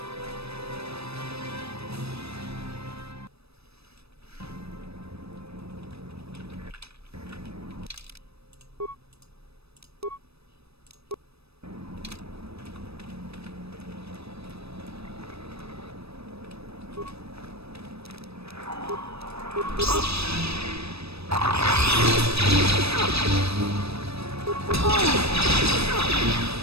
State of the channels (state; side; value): late; left; 0.78 ms